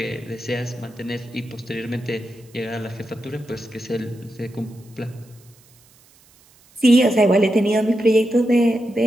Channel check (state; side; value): noise; right; hiss, 29 dB below the sound